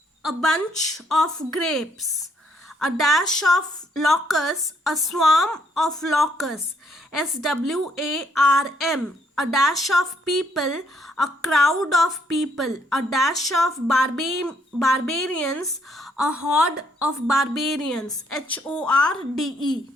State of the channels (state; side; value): normal; both; correlation 0.70